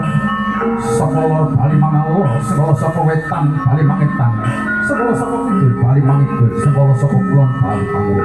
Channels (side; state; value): right; noise; hum, 22 dB below the sound